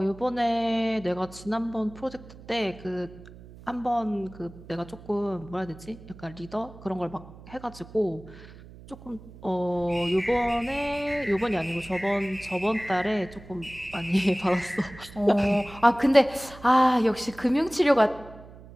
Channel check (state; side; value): noise; right; hum, 19 dB below the sound